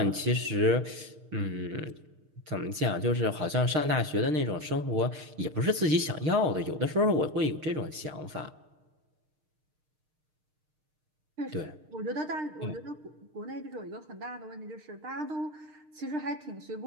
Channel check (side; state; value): left; late; 6.5 ms